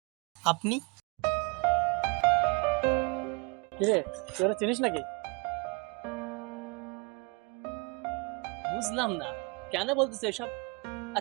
আপনি কিরে, তোরা চিনিস নাকি? বুঝলাম না কেন বলতেছে এসব, আর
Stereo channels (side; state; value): left; quieter; 31.1 dB